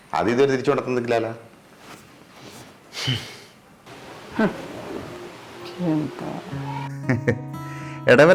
അത് ഇതുവരെ തിരിച്ചു കൊണ്ടു തന്നിട്ടില്ലല്ലോ.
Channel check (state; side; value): identical; both; correlation 1.00